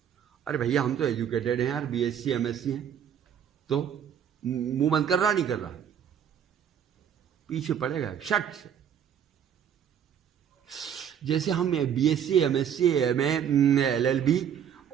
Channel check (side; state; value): left; quieter; 8.8 dB